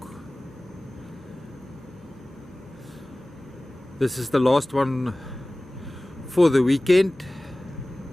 This is the last one for the weekend,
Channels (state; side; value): normal; both; correlation 0.98